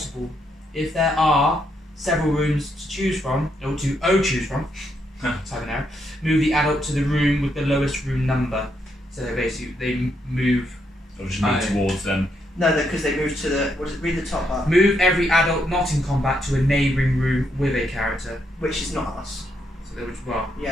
If there are several rooms to choose from, or to choose from, type an error, move the adult to the room with the lowest room number. So basically, they move. So just move towards them. No, because they moved to the... What is it? Read the top part. Move every adult not in combat to a neighbouring room with a character. Which is not us. So they would, well,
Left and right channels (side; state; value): both; normal; correlation 0.77